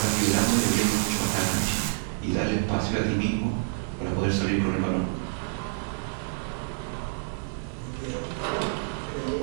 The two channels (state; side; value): silent; left; 60 dB below the other